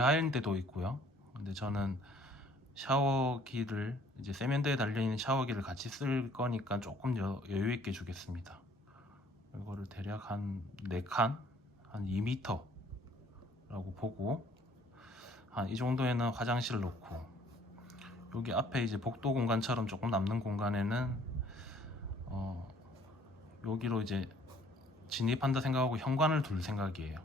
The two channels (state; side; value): normal; both; correlation 0.58